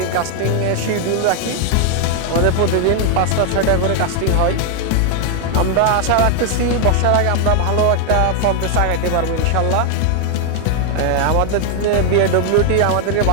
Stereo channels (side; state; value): both; different; correlation 0.00